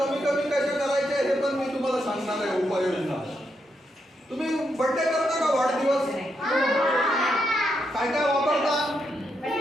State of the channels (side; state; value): both; normal; correlation 0.81